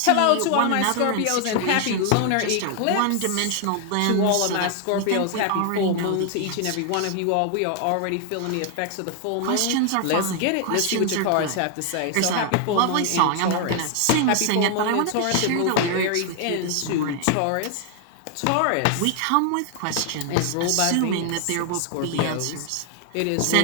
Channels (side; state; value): both; different; correlation 0.00